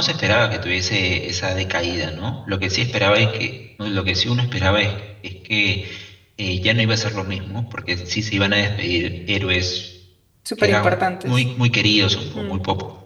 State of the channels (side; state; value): both; identical; correlation 1.00